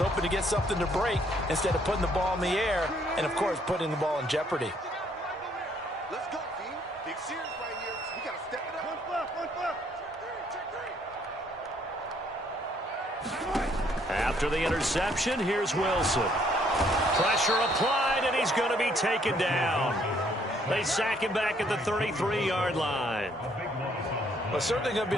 to get something to break instead of putting the ball in the air and, of course, putting the ball in jeopardy. Let's go, B. Big series right here. We got to step it up. One flip. After the interception, here's Wilson. Pressure applied, and he's going to be taken down. They sack him back at the 33-yard line. Well, certainly going to be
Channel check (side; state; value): both; normal; correlation 0.66